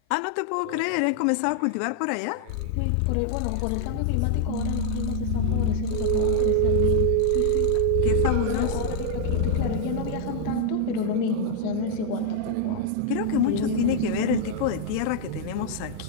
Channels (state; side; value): different; both; correlation 0.00